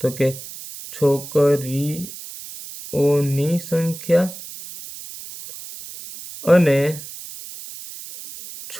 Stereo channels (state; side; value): noise; right; hiss, 13 dB below the sound